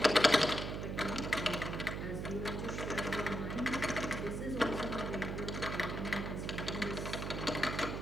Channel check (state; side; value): noise; right; hum, 4 dB below the sound